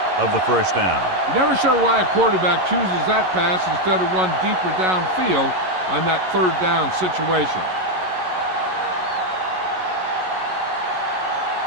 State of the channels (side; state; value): left; late; 11 ms